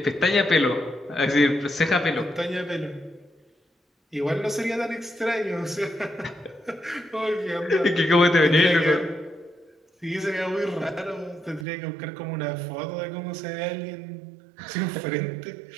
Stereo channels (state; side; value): drops out; left; at 11.7 s